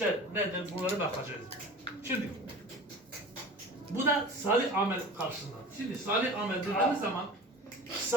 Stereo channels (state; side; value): normal; both; correlation 0.37